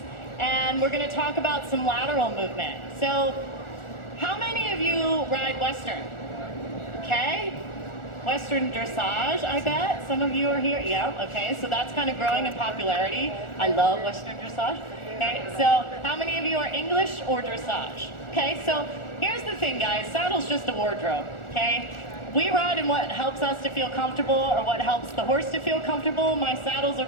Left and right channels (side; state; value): right; late; 1.4 ms